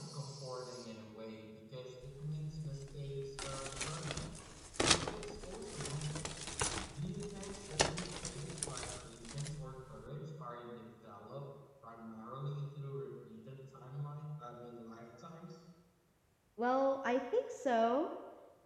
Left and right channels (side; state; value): both; identical; correlation 1.00